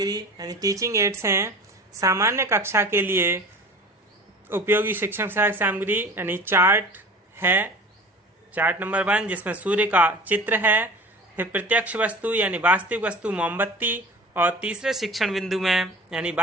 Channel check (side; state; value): both; normal; correlation 0.39